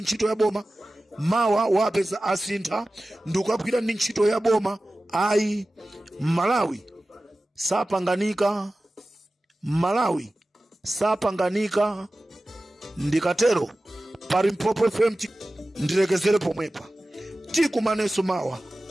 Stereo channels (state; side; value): normal; both; correlation 0.96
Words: ntchito ya boma, mawa wapeza asintha ndikugwira ndi ntchito ya boma. Ayi, Malawi sapanganika. Ndikatero Palimpopo FM ndilekezere pomwepa. Tikumaneso mawa